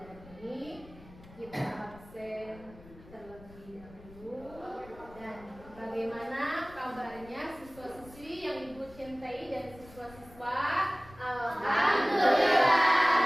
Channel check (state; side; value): noise; left; rumble, 21 dB below the sound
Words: ini, kita absen terlebih dahulu. Dan bagaimana kabarnya siswa-siswi yang Ibu cintai dan siswa-siswa?